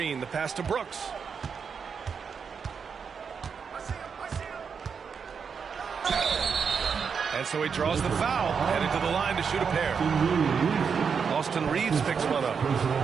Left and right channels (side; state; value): left; quieter; 6.2 dB